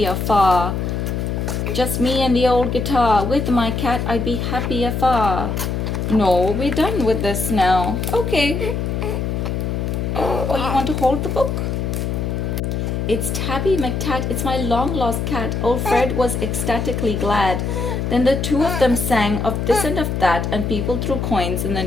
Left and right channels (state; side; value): noise; left; hum, 1 dB below the sound